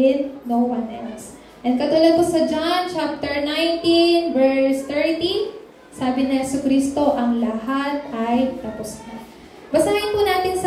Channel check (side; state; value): both; identical; correlation 1.00